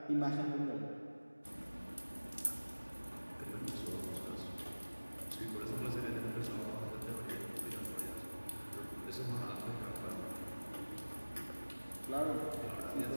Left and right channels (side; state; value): both; inverted; correlation -1.00